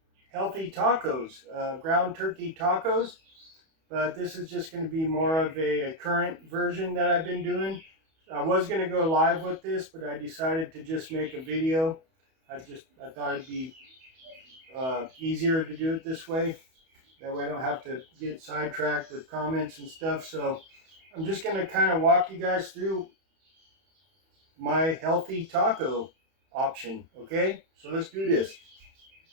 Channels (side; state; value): left; late; 31 ms